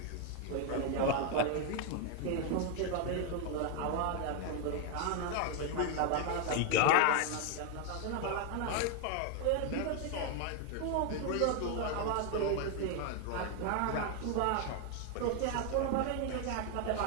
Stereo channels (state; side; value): different; both; correlation 0.01